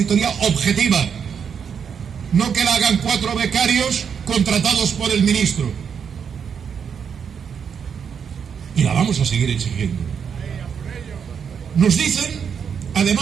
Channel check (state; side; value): quieter; left; 7.1 dB